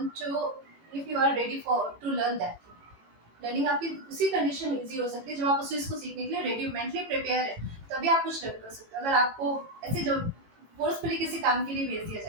to, if you are ready for to learn that thing. Learning आपकी उसी कंडीशन में इजी हो सकती है जब आप उस चीज़ को सीखने के लिए रेडी, मेंटली प्रिपेयर है, तभी आप कुछ लर्न कर सकते हो। अगर आपको ऐसे जो फोर्सफुली किसी काम के लिए भेज दिया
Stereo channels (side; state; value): left; late; 18 ms